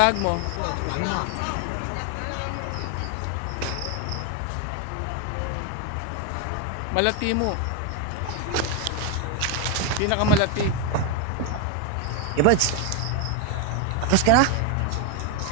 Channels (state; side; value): different; both; correlation 0.01